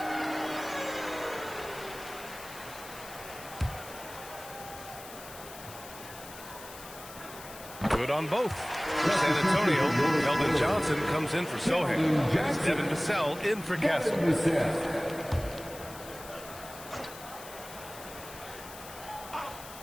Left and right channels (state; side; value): noise; left; hiss, 15 dB below the sound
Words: Good on both. For San Antonio, Keldon Johnson comes in for Sohan. Devin Vassell in for Castle.